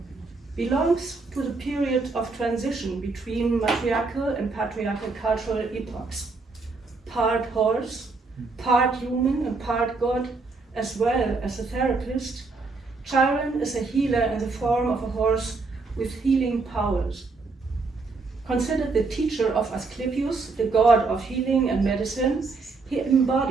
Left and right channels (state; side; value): quieter; left; 4.0 dB